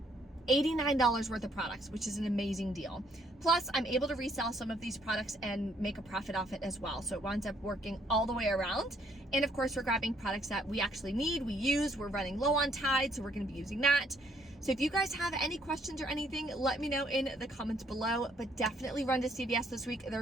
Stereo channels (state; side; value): normal; both; correlation 0.68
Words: $89 worth of products, which is an amazing deal. Plus, I'm able to resell some of these products and make a profit off it as well. So it winds up working all the way around. And of course, we're grabbing products that we actually need, we use, we're running low on Tide, so we're gonna be using that. So if you guys have any questions or anything, let me know in the comments below, but definitely run to CVS this week.